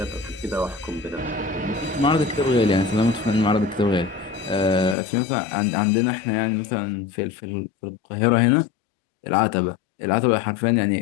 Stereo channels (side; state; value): right; drops out; at 5.0 s